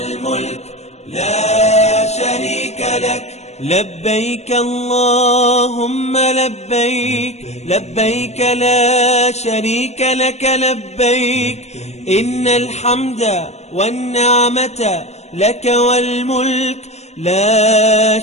لا شريك لك. لبيك اللهم لبيك، لبيك لا شريك لك لبيك، إن الحمد والنعمة لك والملك لا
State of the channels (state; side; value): late; right; 0.32 ms